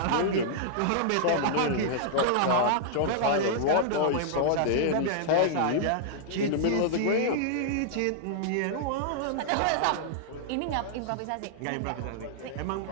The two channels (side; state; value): both; different; correlation -0.02